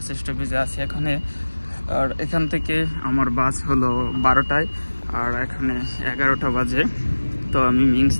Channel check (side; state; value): both; inverted; correlation -1.00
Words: স্টপেজে আছি এখানে। আর এখান থেকে আমার বাস হলো 12টায়, আর এখানে 11টা বাজে। তো আমি মিংস